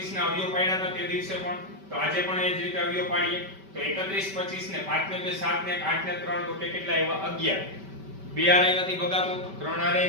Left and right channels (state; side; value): late; left; 5.2 ms